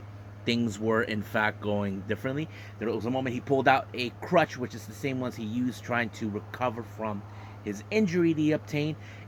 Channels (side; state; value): both; identical; correlation 1.00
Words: things were in fact going differently. There was a moment he pulled out a crutch, which is the same ones he used trying to recover from his injury that he obtained,